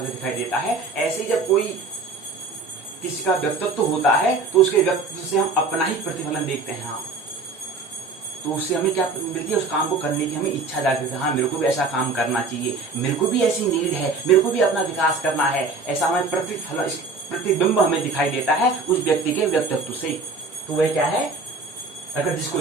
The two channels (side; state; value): left; quieter; 3.9 dB